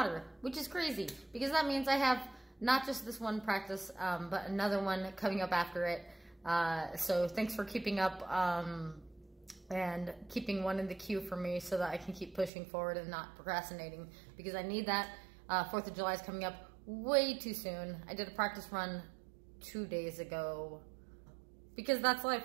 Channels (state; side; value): drops out; left; at 12.5 s